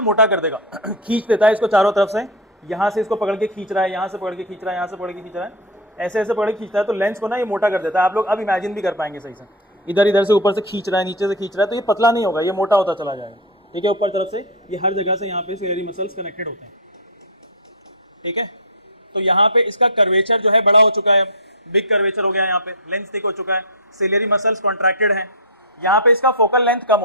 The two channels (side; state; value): both; normal; correlation 0.02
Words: मोटा कर देगा, खींच देता है इसको चारों तरफ से, यहाँ से इसको पकड़ के खींच रहा है, यहाँ से पकड़ के खींच रहा है, यहाँ से पकड़ के खींच रहा है, ऐसे ऐसे पकड़ के खींचता है, तो लेंस को ना ये मोटा कर देता है। आप लोग अब इमेजिन भी कर पाएंगे सही से, इधर इधर से ऊपर से खींच रहा है, नीचे से खींच रहा है, तो ये पतला नहीं होगा, ये मोटा होता चला जाएगा। ठीक है, ऊपर तरफ से ये हर जगह से यहाँ पे सिलेरी मसल्स कनेक्टेड होते हैं, ठीक है। तो यहाँ पे इसका कर्वेचर जो है बड़ा हो चुका है, बिग कर्वेचर हो गया है, यहाँ पे लेंथ थिक हो चुका है, सिलेरी मसल्स कॉन्ट्रैक्टेड हैं, यहाँ पे इसका फोकल लेंथ कम